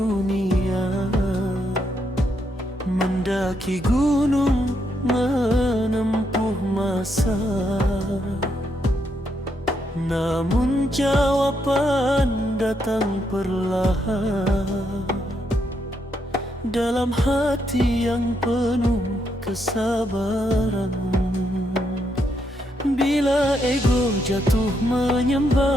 mendaki gunung, menempuh masa. Namun jawaban datang perlahan dalam hati yang penuh kesabaran. Bila ego jatuh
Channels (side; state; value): both; normal; correlation 0.78